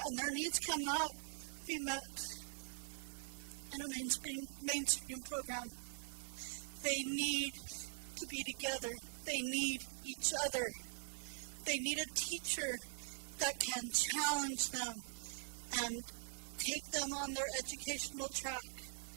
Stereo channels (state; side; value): silent; left; digital silence